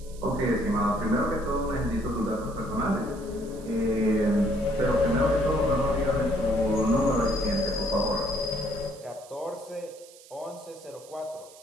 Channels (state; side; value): noise; right; hiss, 22 dB below the sound